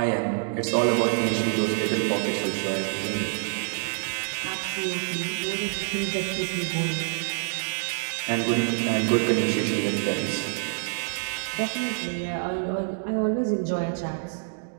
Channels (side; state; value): left; silent; digital silence